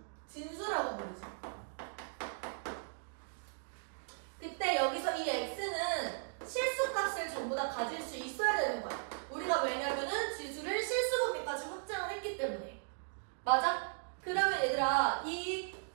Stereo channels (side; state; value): left; silent; digital silence